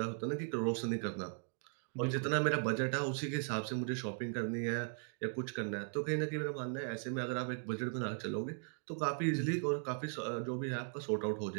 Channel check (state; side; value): silent; left; 52 dB below the other